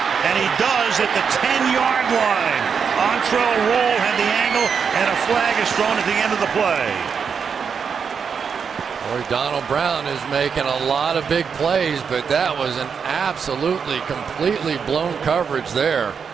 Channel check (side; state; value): left; quieter; 6.4 dB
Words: And he does at the 10-yard line. Entrell Roll had the angle, and a flag is thrown at the end of the play. Boy, Donald Brown is making a lot of big plays, but that was an absolutely, completely blown coverage there.